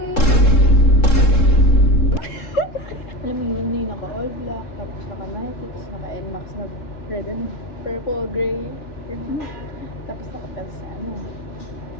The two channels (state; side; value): late; right; 3.7 ms